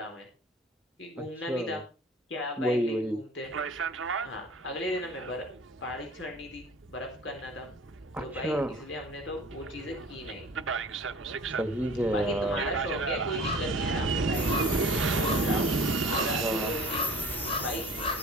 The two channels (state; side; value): normal; both; correlation 0.45